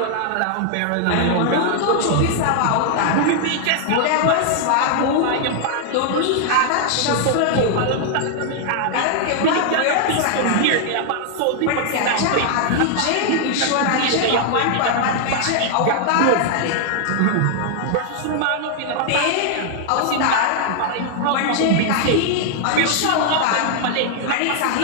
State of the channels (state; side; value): different; both; correlation 0.00